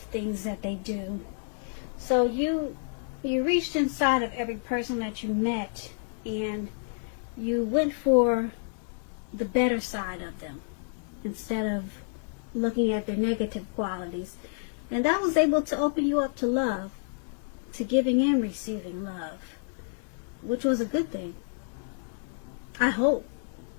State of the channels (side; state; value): right; silent; digital silence